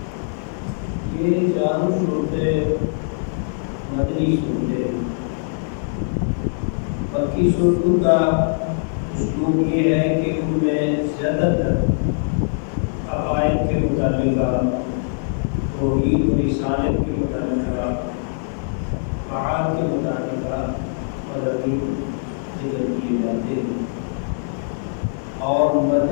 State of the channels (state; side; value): silent; right; digital silence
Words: یہ 4 صورتیں مدنی صورتیں ہیں. مکی صورتوں کا اسلوب یہ ہے کہ ان میں زیادہ تر عقائد کے متعلق، توحید و رسالت کے متعلق، معاد کے متعلق مضامین ذکر کیے جاتے ہیں. اور